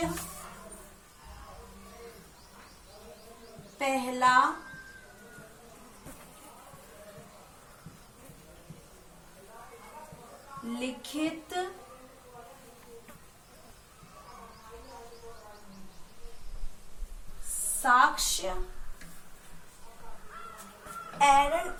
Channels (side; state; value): both; identical; correlation 1.00